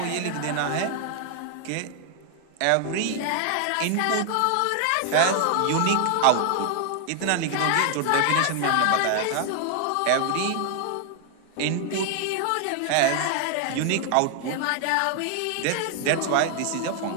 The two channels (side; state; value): both; different; correlation 0.00